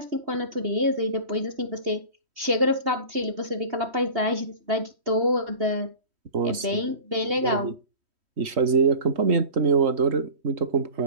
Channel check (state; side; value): late; left; 3.1 ms